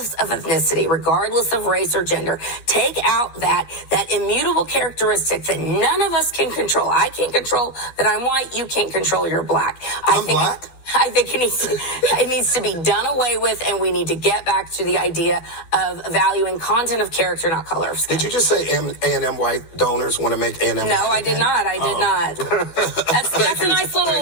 of ethnicity, regardless of race or gender. Take out that immutable characteristic that none of us can control. I can't control that I'm white. You can't control you're black. I'm black? I think it needs to be done away with, and we need to get back to the idea of valuing content of character, not color of skin. Did you just say A&M white donors want to make A&M? No, I did not. I did not. That's a nice little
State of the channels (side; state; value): right; late; 12 ms